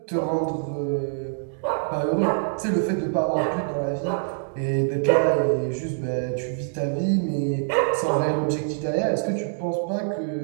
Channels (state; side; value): silent; left; digital silence